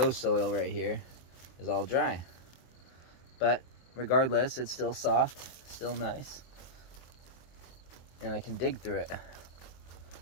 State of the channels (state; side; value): late; right; 23 ms